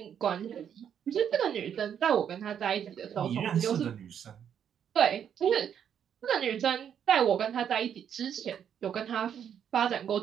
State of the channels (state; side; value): quieter; left; 8.7 dB